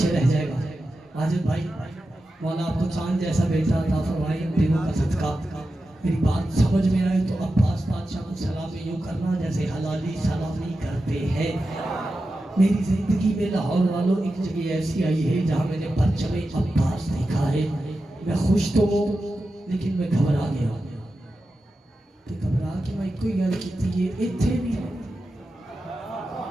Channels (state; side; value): normal; both; correlation 0.91